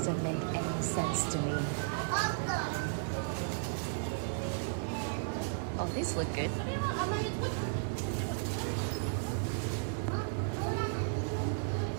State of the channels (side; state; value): left; silent; digital silence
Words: make any sense to me. Oh, these look good.